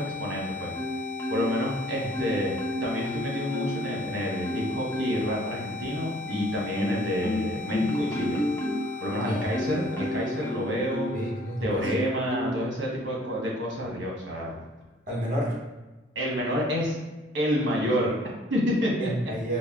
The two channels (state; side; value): normal; both; correlation 0.57